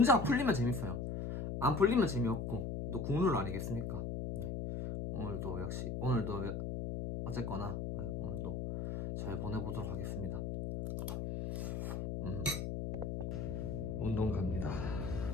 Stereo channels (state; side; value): noise; left; hum, 3 dB below the sound